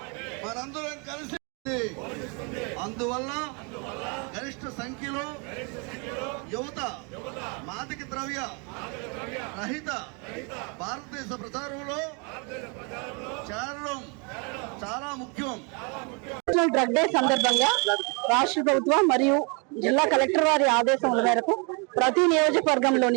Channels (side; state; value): left; quieter; 33.6 dB